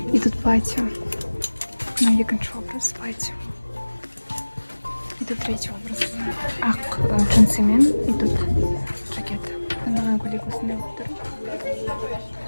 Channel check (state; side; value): inverted; both; correlation -1.00